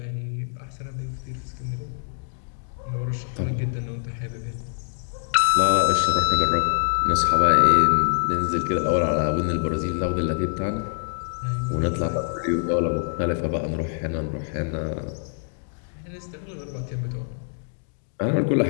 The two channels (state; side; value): silent; right; digital silence